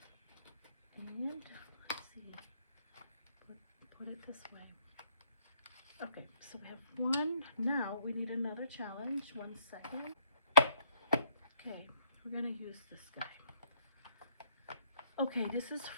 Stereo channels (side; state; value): both; inverted; correlation -0.68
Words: and let's see, put it this way. Okay, so we have one. Now we need another challenge. 1 second. Okay, we're gonna use this guy. Okay, this is